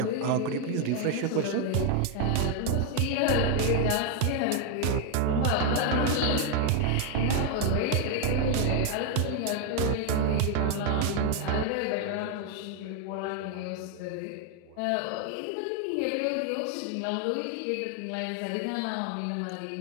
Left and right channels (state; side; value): different; both; correlation 0.01